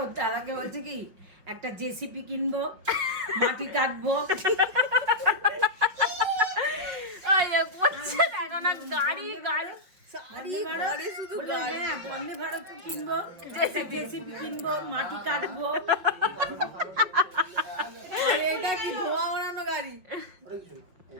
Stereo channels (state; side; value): late; left; 5.2 ms